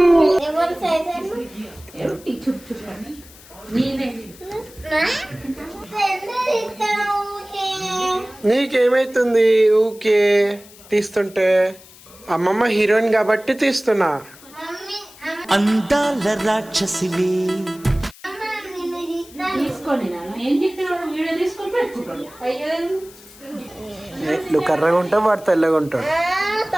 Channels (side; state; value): left; noise; hiss, 22 dB below the sound